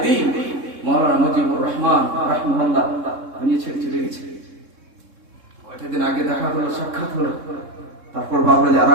দ্বীন মাওলানা মুজিবুর রহমান রাহিমাহুল্লাহ দুনিয়া ছেড়ে চলে গেছে। কয়েকটা দিন আগে দেখা হলো, সাক্ষাৎ হলো, তারপর ভাবলো যে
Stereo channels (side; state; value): left; late; 3.7 ms